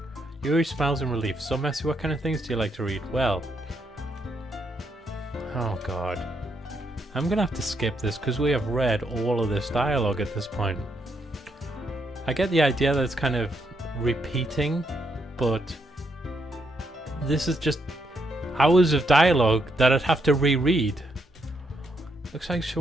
Yuri smiles in relief. So, Messy, what kind of things do you like to read? Well... Oh, God. I'm gonna have to skip this because we have read all of this dialogue at this point. I get the idea that it's kind of repeating, but this is just hours of dialogue that I'd have to reread. Looks like she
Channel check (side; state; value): both; normal; correlation 0.77